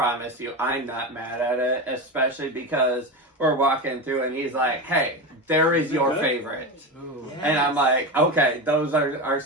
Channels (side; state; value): both; normal; correlation 0.20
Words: you, I'm not mad at it, especially because we're walking through and he's like, "Hey, there is your favorite," and I'm like, "Okay, those are